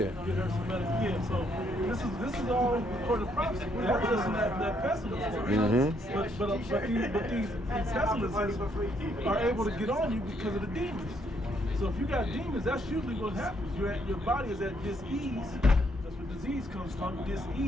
Get her some medical. Yeah. So this is all according to prophecy. That doesn't that pessimist. But these pessimists are able to get on you because of the demons. So if you got demons, that's usually what happens. Your body is at dis-ease. That's where disease comes from,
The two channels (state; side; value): normal; both; correlation 0.72